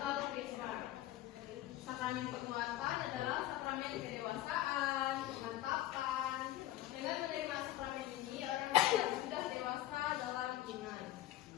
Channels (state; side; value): quieter; right; 14.3 dB